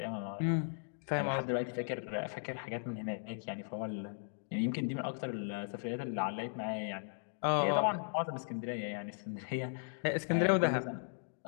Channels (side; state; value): right; silent; digital silence